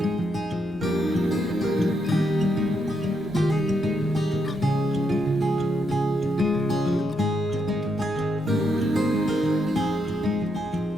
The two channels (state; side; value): normal; both; correlation 0.79